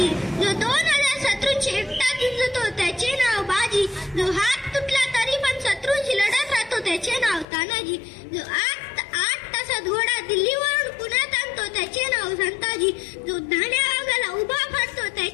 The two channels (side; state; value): right; drops out; at 7.5 s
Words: जो 2000 शत्रूंची एकटा झुंजतो त्याचे नाव बाजी. जो हात तुटला तरी पण शत्रूंशी लढत राहतो त्याचे नाव तानाजी. जो 8 तासात घोडा दिल्लीवरून पुण्यात आणतो त्याचे नाव संताजी. जो धाण्या वाघाला उभा फाडतो